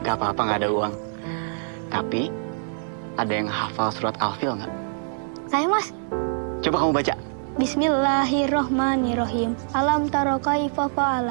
Gak apa-apa, gak ada uang. Tapi, ada yang hafal surat Al-Fil nggak? Saya, Mas. Coba kamu baca. Bismillahirrohmanirrohim. Alam taro kaifa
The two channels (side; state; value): left; silent; digital silence